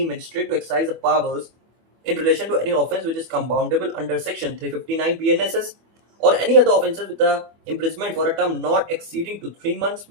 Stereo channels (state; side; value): late; left; 24 ms